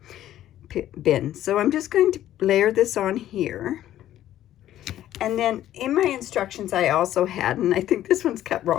bin. So I'm just going to layer this on here. And then in my instructions I also had, and I think this one's cut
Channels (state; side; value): quieter; right; 12.6 dB